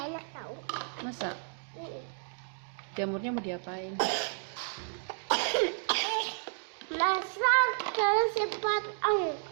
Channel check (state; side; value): silent; left; 56 dB below the other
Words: enak tau. Masa jamurnya mau diapain? Masak terus cepat.